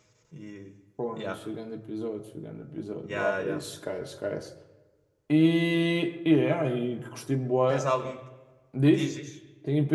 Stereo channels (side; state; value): both; identical; correlation 1.00